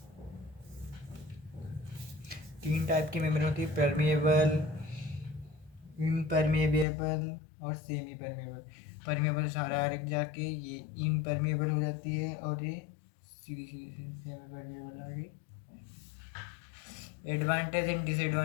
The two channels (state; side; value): drops out; right; at 6.9 s